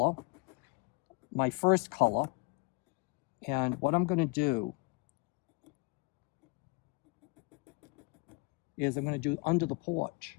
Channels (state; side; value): quieter; right; 27.7 dB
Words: my first color. And what I'm going to do is I'm going to do under the porch.